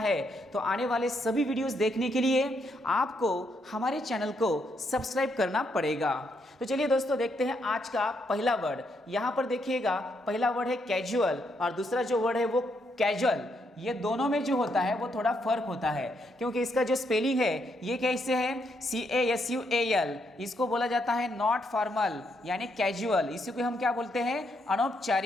तो आने वाले सभी वीडियोस देखने के लिए आपको हमारे चैनल को सब्सक्राइब करना पड़ेगा। तो चलिए दोस्तों देखते हैं आज का पहला वर्ड। यहां पर देखिएगा पहला वर्ड है कैजुअल और दूसरा जो वर्ड है वो कैजुअल। ये दोनों में जो होता है वो थोड़ा फर्क होता है क्योंकि इसका जो स्पेलिंग है ये कैसे है, CASUAL। इसको बोला जाता है नॉट फॉर्मल यानी कैजुअल। इसी को हम क्या बोलते हैं,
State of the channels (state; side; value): normal; both; correlation 0.77